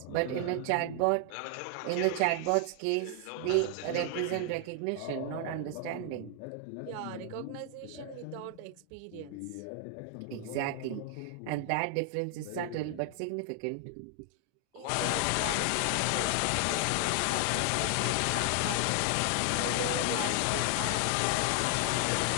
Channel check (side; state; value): both; different; correlation 0.00